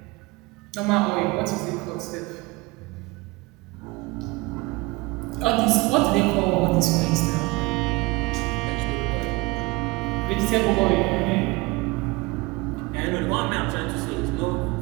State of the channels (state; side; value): quieter; left; 23.4 dB